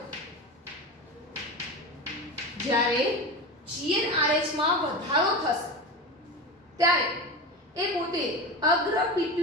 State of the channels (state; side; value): normal; both; correlation 0.25